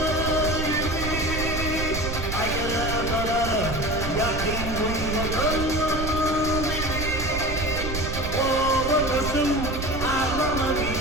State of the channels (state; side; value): noise; right; rumble, 5 dB below the sound